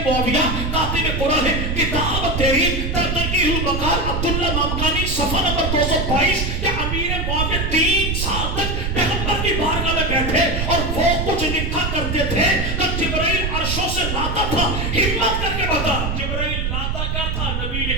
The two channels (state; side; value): noise; right; rumble, 1 dB below the sound